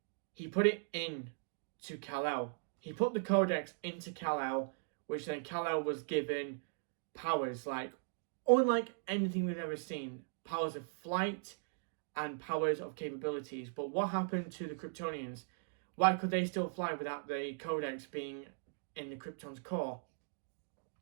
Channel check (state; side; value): silent; left; digital silence